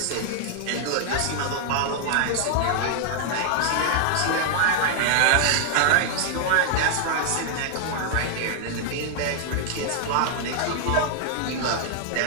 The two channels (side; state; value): both; different; correlation 0.00